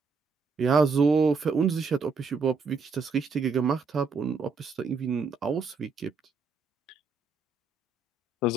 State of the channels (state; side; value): quieter; left; 4.5 dB